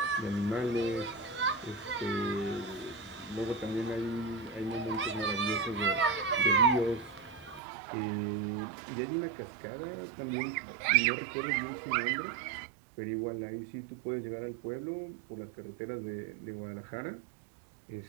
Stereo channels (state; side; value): drops out; left; at 7.6 s